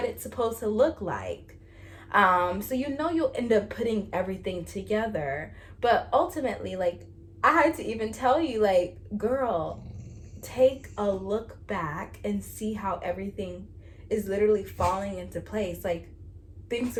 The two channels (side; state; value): both; identical; correlation 1.00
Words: it's supposed to look like. So you'll end up putting everything together. But ultimately, like, I had to even tell you, like, girl, take a look back and see how everything is literally falling into place. Like, things